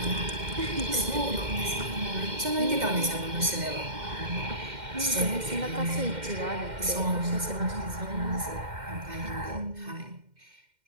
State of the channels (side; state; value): left; late; 2.1 ms